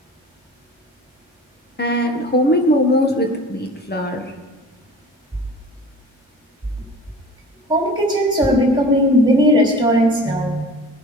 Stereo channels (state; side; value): normal; both; correlation 0.41